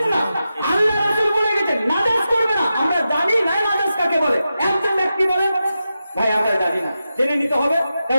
না। আল্লাহ রাসূল বলে গেছেন নাজাস করবে না। আমরা জানি না নাজাস কাকে বলে। একজন ব্যক্তি বলে ভাই আমরা জানি না, জেনে নিতে হবে,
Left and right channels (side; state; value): both; inverted; correlation -0.90